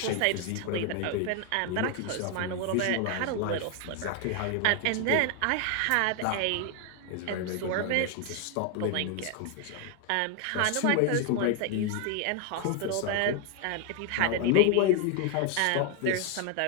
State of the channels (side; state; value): both; different; correlation 0.01